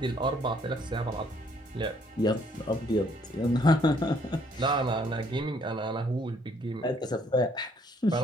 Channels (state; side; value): normal; both; correlation 0.65